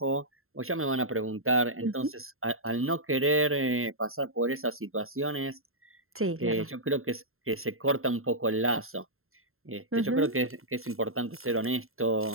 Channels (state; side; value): late; left; 0.61 ms